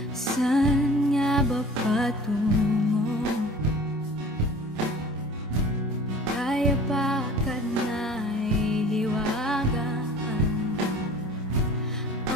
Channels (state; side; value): normal; both; correlation 0.45